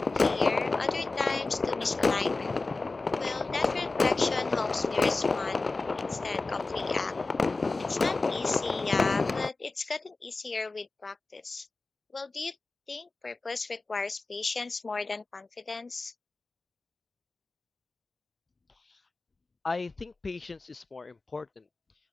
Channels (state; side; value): quieter; right; 3.5 dB